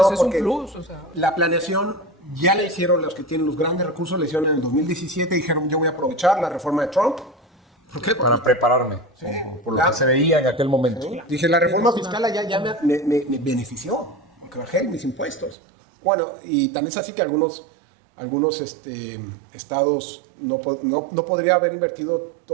es un plus, o sea. La planeación ya la hicieron los que tienen los grandes recursos, la hicieron en el 2017, dijeron yo voy a aprovechar la reforma de Trump. ¿Por qué? Para prepararme, sí, por lo que se veía en aquel momento. Sí. Dije, la reforma fiscal ya me benefició, porque bajé mis impuestos. Bueno, y también es así que algunos estados no podría haber invertido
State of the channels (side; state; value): left; drops out; at 15.6 s